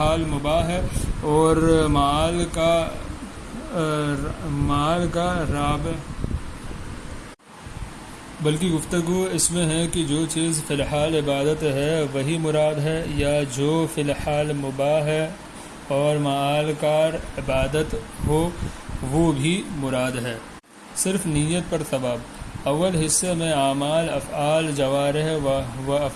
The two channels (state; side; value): identical; both; correlation 1.00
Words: مباح ہے اور معال کا رابع، بلکہ گفتگو اس میں ہے کہ جو چیز فی الحال عبادت ہے وہی مراد ہے، یا جو فی الحال مباح ہے اور معال کا عبادت ہو وہ بھی مراد ہے۔ صرف نیت پر ثواب۔ اول حصے میں اعمال افعال جوارح و